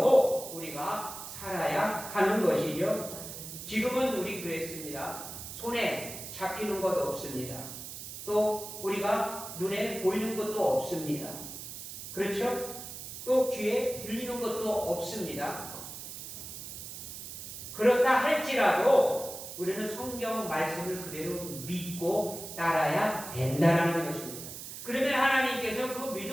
우리가 살아야 하는 것이죠. 지금은 우리 그랬습니다. 손에 잡히는 것 없습니다. 또 우리가 눈에 보이는 것도 없습니다. 그렇죠? 또 귀에 들리는 것도 없습니다. 그렇다 할지라도 우리는 성경 말씀을 그대로 믿고 따라야 된다는 것입니다. 그러면 하나님께서 그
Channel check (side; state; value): right; noise; hiss, 10 dB below the sound